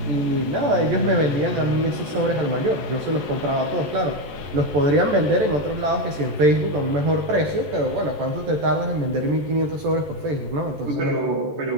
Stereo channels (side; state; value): left; late; 14 ms